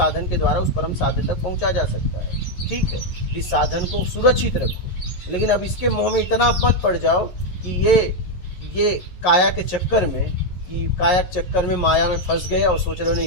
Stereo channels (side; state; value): right; late; 11 ms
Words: के द्वारा उस परम साध्य तक पहुंचा जा सकता है। ठीक है, इस साधन को सुरक्षित रखो। लेकिन अब इसके मोह में इतना मत पड़ जाओ कि ये काया के चक्कर में, कि काया के चक्कर में माया में फंस गए और सोच रहे हो